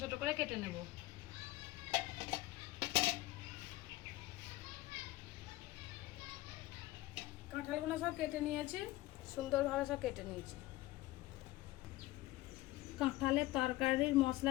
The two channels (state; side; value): quieter; right; 17.8 dB